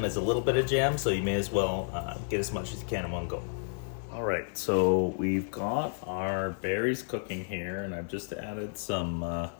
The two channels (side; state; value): right; silent; digital silence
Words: as a little bit of jam, so you may as well get as much as you can in one go. All right, so we've got our berries cooking here, and I've just added some